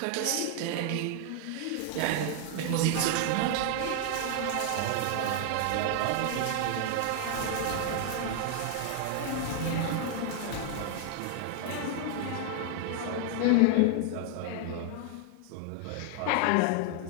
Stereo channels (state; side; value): different; both; correlation 0.00